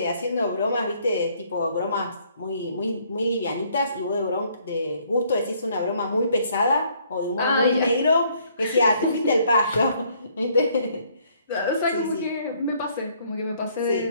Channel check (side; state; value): both; inverted; correlation -0.65